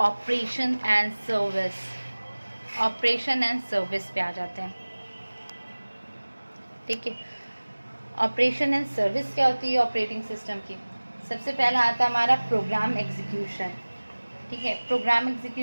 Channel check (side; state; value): both; inverted; correlation -1.00